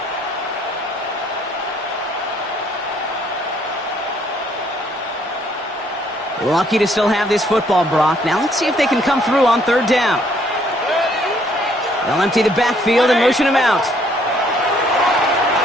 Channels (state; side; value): normal; both; correlation 0.66